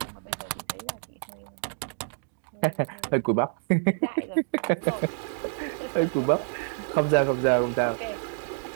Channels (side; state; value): left; silent; digital silence